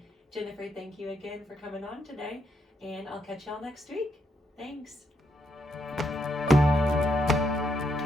Jennifer, thank you again for coming on today, and I'll catch y'all next week. Thanks.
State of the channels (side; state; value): both; normal; correlation 0.79